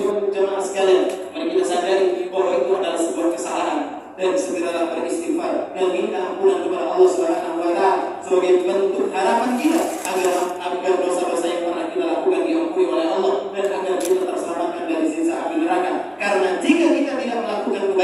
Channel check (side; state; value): both; identical; correlation 1.00